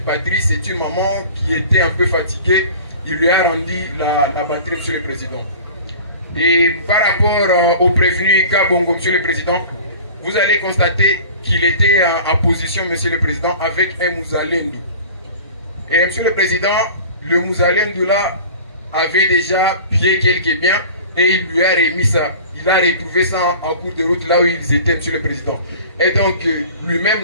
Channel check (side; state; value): both; inverted; correlation -0.41